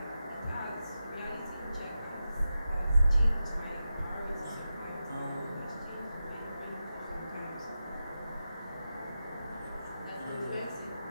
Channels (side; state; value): both; inverted; correlation -0.91